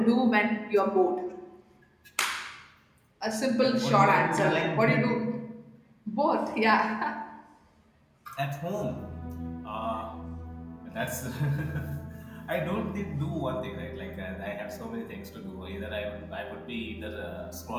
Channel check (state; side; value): identical; both; correlation 1.00